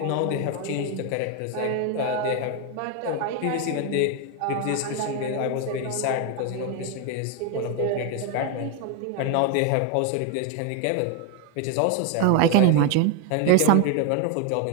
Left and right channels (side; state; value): both; different; correlation 0.01